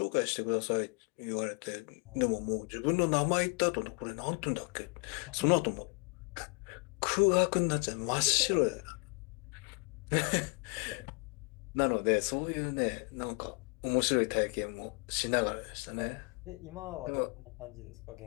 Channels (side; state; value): right; quieter; 33.3 dB